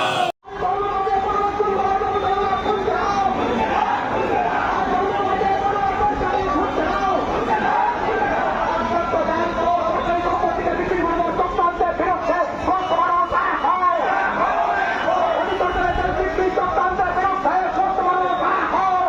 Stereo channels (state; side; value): identical; both; correlation 1.00